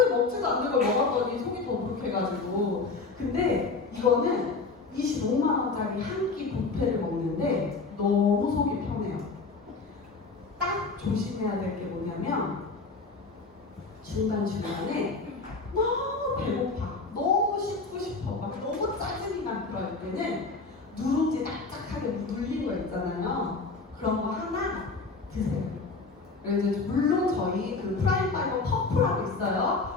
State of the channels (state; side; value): quieter; right; 4.0 dB